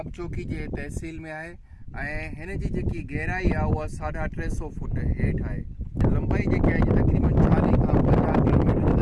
चौकी जे तहसील में आहे ऐं हिन जी जेकी गहराई आहे उहा 350 फुट हेठि आहे। लंबाई जेकी आहे तक़रीबन 40 खां 50 किलोमीटर जो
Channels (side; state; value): both; identical; correlation 1.00